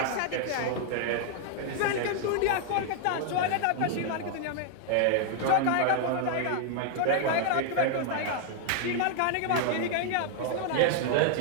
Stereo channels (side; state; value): both; different; correlation 0.00